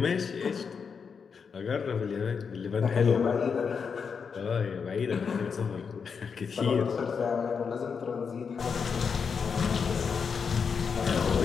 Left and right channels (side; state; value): right; quieter; 6.0 dB